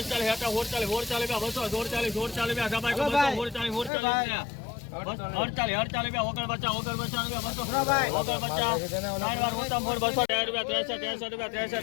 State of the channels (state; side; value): drops out; right; at 3.9 s